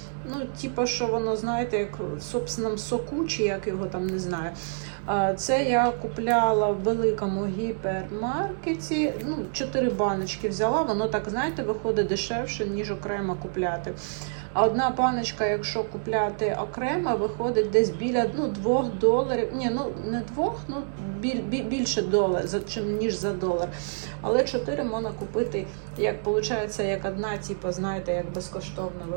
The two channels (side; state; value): left; silent; 60 dB below the other